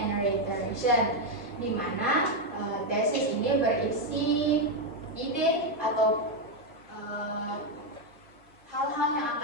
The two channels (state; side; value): normal; both; correlation 0.04